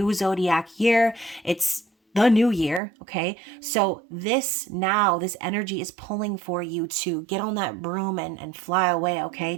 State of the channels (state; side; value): drops out; left; at 2.8 s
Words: zodiac year. It's the new year, okay? So this energy is pulling for you to get on that broom and fly away, okay?